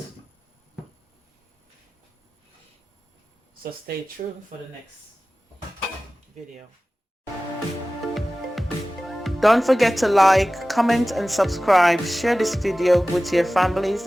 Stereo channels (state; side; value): normal; both; correlation 0.97